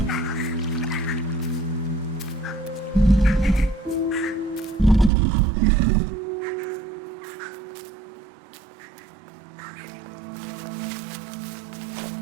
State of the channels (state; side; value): drops out; left; at 5.1 s